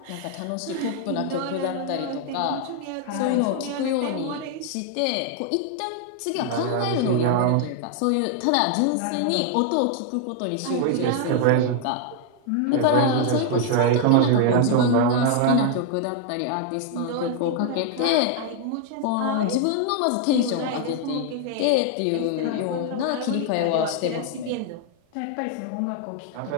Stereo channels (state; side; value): different; both; correlation 0.00